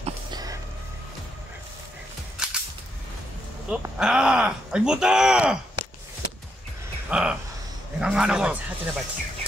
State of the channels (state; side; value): normal; both; correlation 0.79